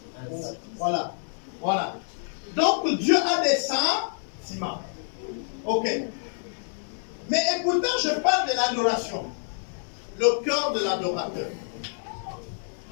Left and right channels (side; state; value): right; silent; digital silence